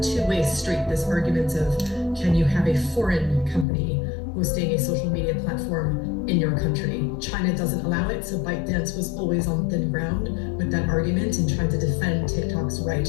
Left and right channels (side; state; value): right; drops out; at 3.7 s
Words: two-way street, this argument of, can you have a foreign company hosting a social media platform in your country? China doesn't allow it, so ByteDance was always on thin ground with that argument and trying to defend TikTok's right